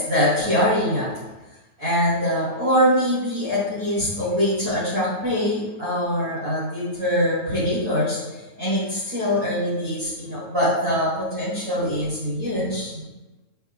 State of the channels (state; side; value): late; left; 9.3 ms